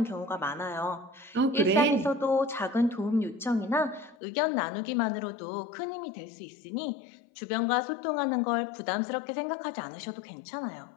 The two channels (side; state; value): right; drops out; at 4.2 s